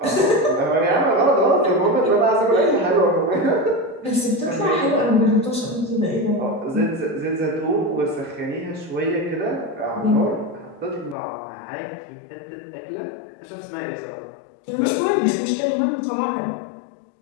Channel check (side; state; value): right; drops out; at 11.2 s